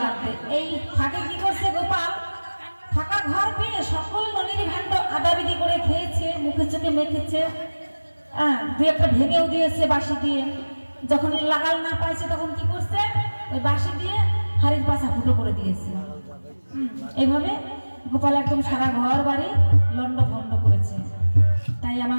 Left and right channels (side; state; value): both; inverted; correlation -1.00